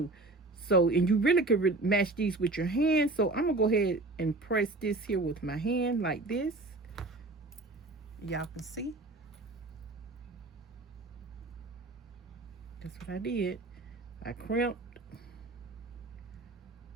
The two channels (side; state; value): left; quieter; 3.1 dB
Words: So, and you really could match these with your hand. So, I'm gonna go ahead and press this here with my hand like this. Y'all can see. That's what I did. I crimped,